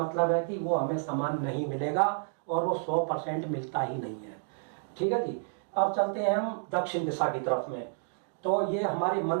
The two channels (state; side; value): silent; left; digital silence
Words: है कि वो हमें सामान नहीं मिलेगा और वो 100% मिलता ही नहीं है, ठीक है जी। अब चलते हैं हम दक्षिण दिशा की तरफ में। तो ये हमारे